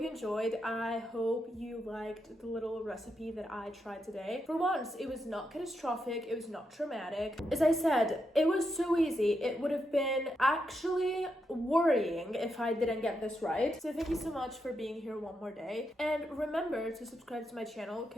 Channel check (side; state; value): both; normal; correlation 0.83